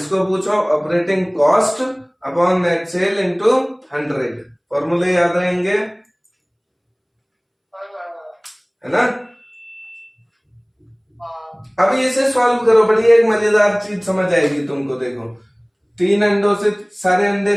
पूछो operating cost upon net cell into 100, फॉर्मूले याद रहेंगे, है ना। अब इसे सॉल्व करो, बड़ी एक मजेदार चीज समझ आएगी तुमको। देखो 3 अंडों से सारे अंडे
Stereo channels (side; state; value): both; identical; correlation 1.00